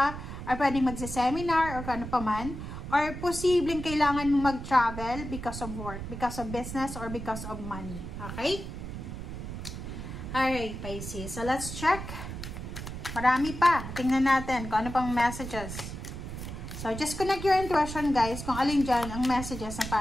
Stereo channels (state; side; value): noise; right; rumble, 8 dB below the sound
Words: or pwedeng magsa-seminar or kano pa man. Or posibleng kailangan mo mag-travel because of work, because of business, or because of money. Okay? Alright, Pisces. So let's check. Marami pa. Tingnan natin kung ano pang messages. So, just connect your intuition, guys, kung alin dyan ang messages na